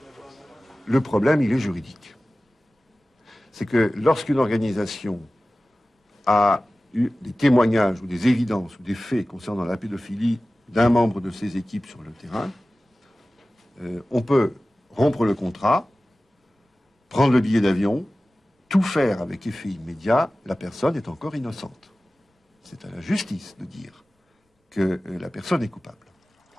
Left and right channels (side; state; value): both; normal; correlation 0.97